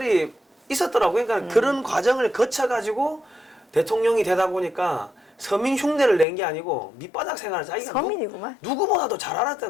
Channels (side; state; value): right; drops out; at 6.2 s